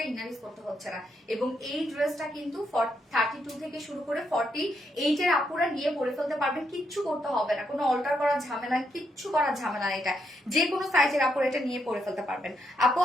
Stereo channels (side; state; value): both; normal; correlation 0.78